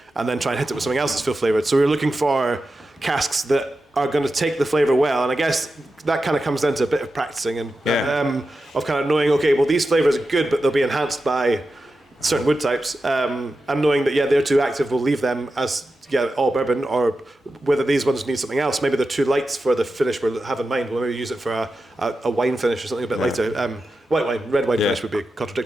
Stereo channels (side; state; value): both; normal; correlation 0.91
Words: try and hit it with something else that's full flavoured? So we're looking for casks that are going to take the flavour well, and I guess that kind of comes down to a bit of practicing and of kind of knowing, okay, well these flavours are good, but they'll be enhanced by certain wood types, and knowing that they're too active, we'll leave them as all bourbon, or whether these ones need something else. Maybe they're too light for the finish we have in mind. We'll maybe use it for a wine finish or something a bit lighter. White wine, red wine finish would be